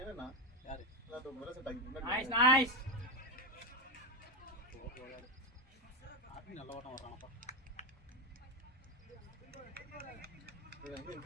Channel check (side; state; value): both; normal; correlation 0.11